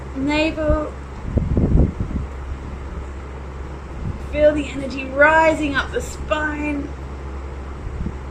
navel. Feel the energy rising up the spine.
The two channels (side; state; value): both; identical; correlation 1.00